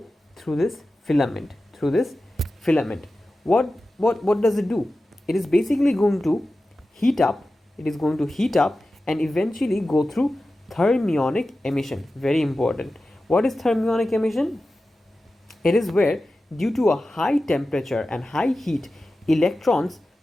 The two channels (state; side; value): normal; both; correlation 0.94